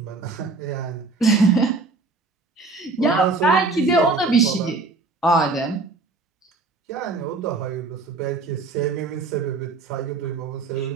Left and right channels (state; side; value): quieter; left; 3.7 dB